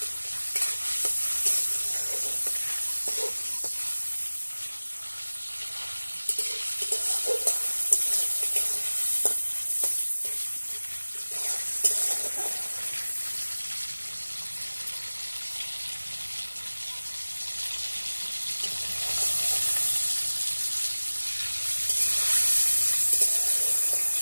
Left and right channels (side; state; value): both; inverted; correlation -1.00